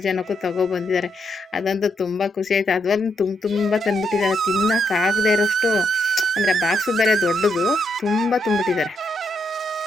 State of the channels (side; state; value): both; normal; correlation 0.78